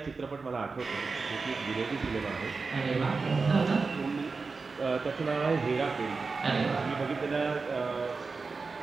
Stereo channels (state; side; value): quieter; left; 4.4 dB